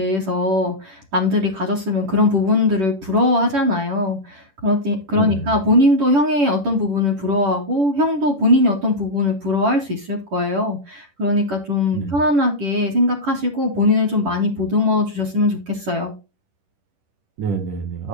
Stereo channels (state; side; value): late; left; 10 ms